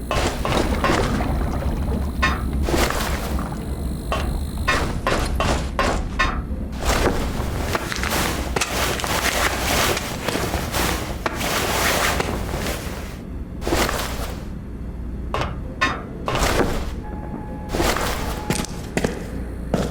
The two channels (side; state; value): both; identical; correlation 1.00